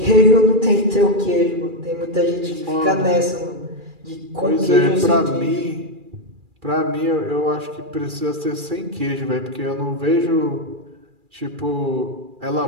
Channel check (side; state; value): left; late; 2.4 ms